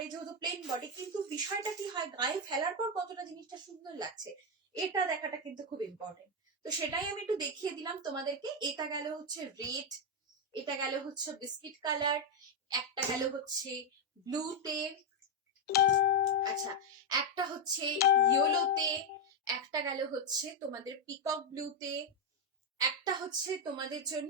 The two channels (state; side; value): normal; both; correlation 0.03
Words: যেহেতু প্লেন বডি, কিন্তু বিষয়টা কি হয়, গায়ে ফেলার পর কতটা জিনিসটা সুন্দর লাগছে এটা দেখাটা কিন্তু খুব ইম্পর্টেন্ট। তো সেটাই আমি একটু দেখিয়ে দিলাম তোমাদেরকে। এটা গেল হচ্ছে রেড, এটা গেল হচ্ছে বিস্কিট কালার, একটা গেল হচ্ছে ব্লুতে, আচ্ছা একটা হচ্ছে ইয়েলোতে, একটা গেল হচ্ছে তোমাদের পিকক ব্লুতে, একটা হচ্ছে তোমাদের